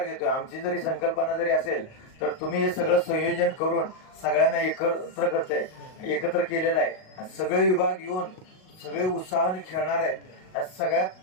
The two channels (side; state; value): right; late; 38 ms